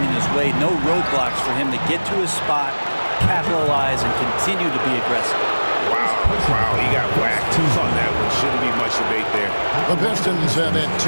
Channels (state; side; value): inverted; both; correlation -1.00